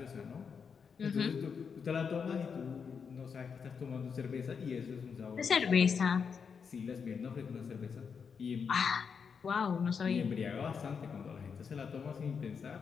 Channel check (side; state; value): right; quieter; 6.2 dB